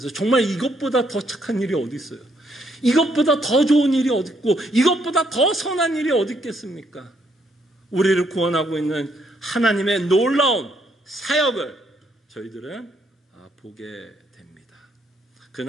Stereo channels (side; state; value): both; normal; correlation 0.72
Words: 정말 이것보다 더 착한 일이 어디 있어요? 이것보다 더 좋은 일이 어디 있고, 이것보다 더 선한 일이 어디 있겠습니까? 우리를 구원하고 있는 하나님의 놀라운 사역을 저희들은 보게 됩니다.